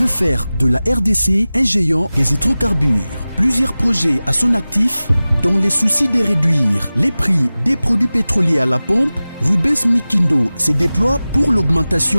faire de la RDC un géant des hydrocarbures. Plusieurs projets à son actif, dans les soucis de réduire les prix des produits pétroliers à la pompe. Rubens Mikindo se déploie pour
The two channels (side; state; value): both; inverted; correlation -0.97